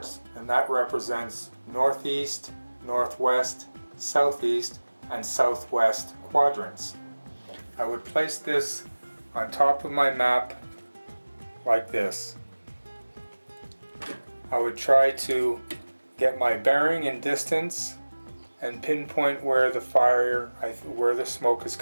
and that represents northeast, northwest, southeast, and southwest quadrants. I would place this on top of my map like this. I would try to get my bearing and distance and pinpoint where the where the smoke is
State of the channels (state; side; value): inverted; both; correlation -1.00